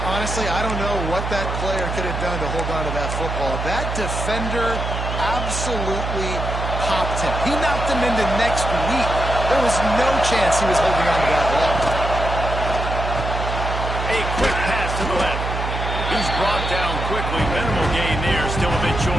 honestly, I don't know what that player could have done to hold on to that football. That defender absolutely popped him. He knocked him into next week. There was no chance he was holding on to that ball. A quick pass to the left. He's brought down quickly. Minimal gain there, still a bit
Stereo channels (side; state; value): right; noise; hum, 4 dB below the sound